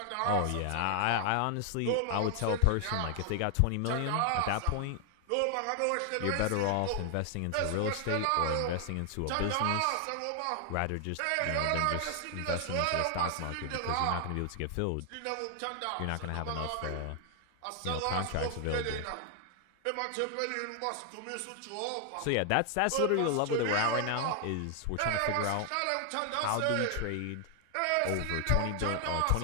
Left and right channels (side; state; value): both; different; correlation 0.00